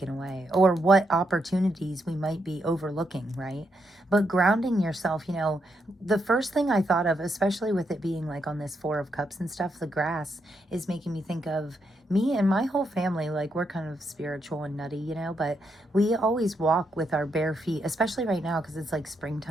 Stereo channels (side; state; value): both; normal; correlation 0.80